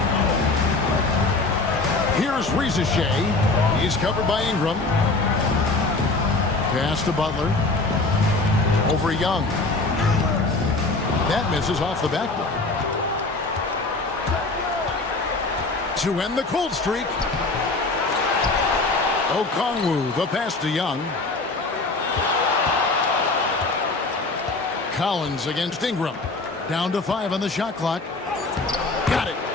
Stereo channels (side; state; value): right; quieter; 3.4 dB